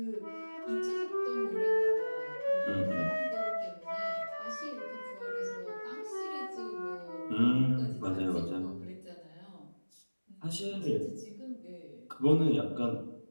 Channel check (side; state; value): both; inverted; correlation -1.00